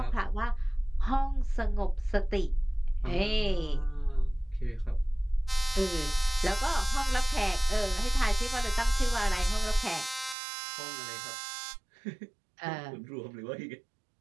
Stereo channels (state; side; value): drops out; left; at 10.4 s